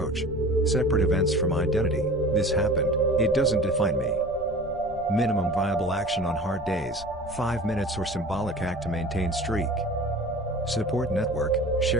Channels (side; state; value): left; noise; rumble, 17 dB below the sound